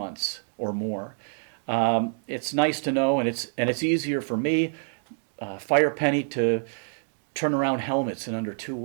or more. It's nice to know, and it's easier for me, Firepenny, to turn around helmets in under 2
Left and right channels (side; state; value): left; silent; digital silence